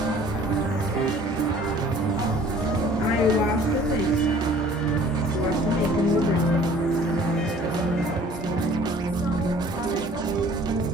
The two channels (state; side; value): normal; both; correlation 0.52